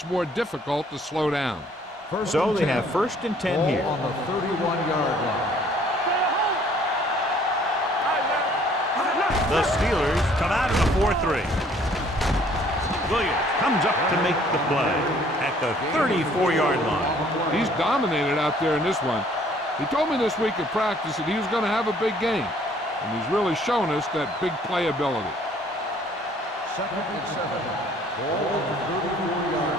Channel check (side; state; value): both; normal; correlation 0.59